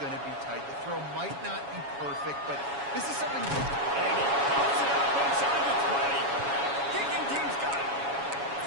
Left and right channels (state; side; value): late; left; 7.2 ms